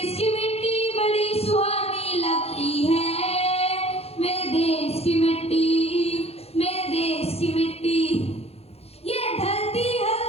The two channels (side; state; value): right; late; 0.29 ms